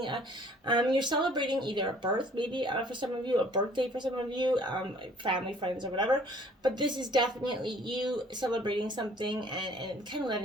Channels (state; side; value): normal; both; correlation 0.55